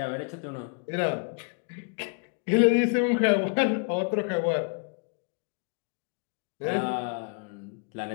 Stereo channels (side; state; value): right; quieter; 37.3 dB